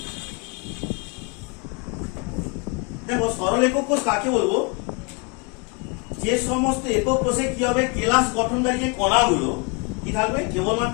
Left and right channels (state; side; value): quieter; right; 31.8 dB